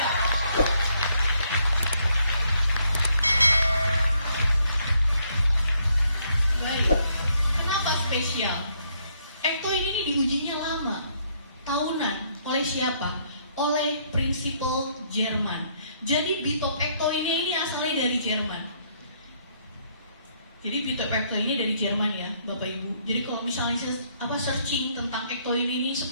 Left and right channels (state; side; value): inverted; both; correlation -0.70